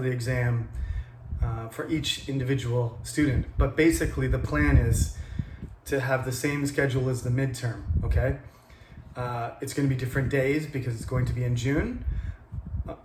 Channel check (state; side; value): identical; both; correlation 1.00